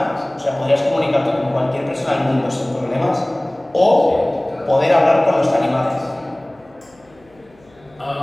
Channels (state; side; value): noise; left; hum, 30 dB below the sound